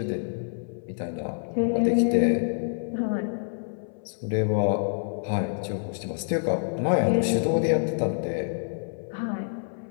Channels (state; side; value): silent; right; 60 dB below the other